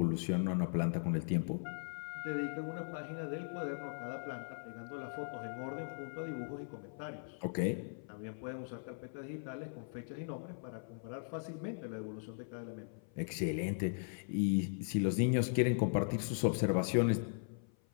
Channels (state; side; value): silent; right; 52 dB below the other